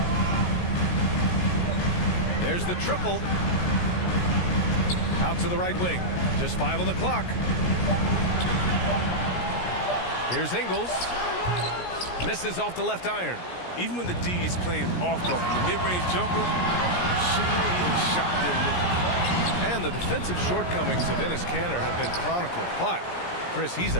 There's the triple. Out to the right wing. Just 5 on the clock. Here's Ingles. Misses off the left iron. Even when the D is playing off of the mid-range jumper, shouldn't be the shot they're looking. And the defensive shortcomings of Enes Kanter have been chronicled. But, Chris, he's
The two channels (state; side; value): late; right; 17 ms